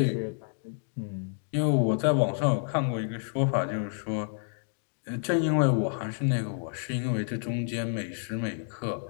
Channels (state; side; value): silent; right; digital silence